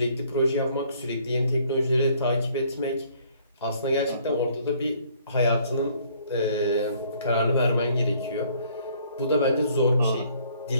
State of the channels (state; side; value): inverted; both; correlation -0.61